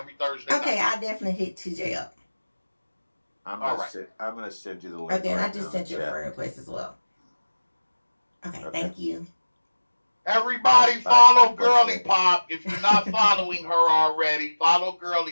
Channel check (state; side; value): inverted; both; correlation -1.00